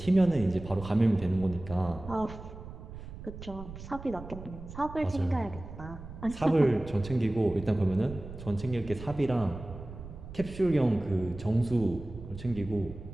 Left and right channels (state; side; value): noise; right; rumble, 13 dB below the sound